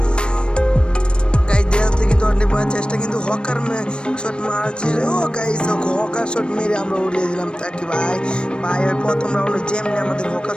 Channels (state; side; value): late; right; 0.055 ms